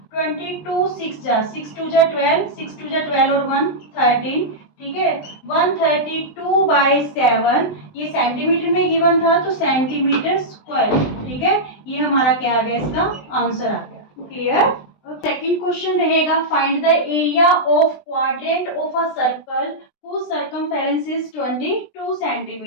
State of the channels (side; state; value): right; late; 20 ms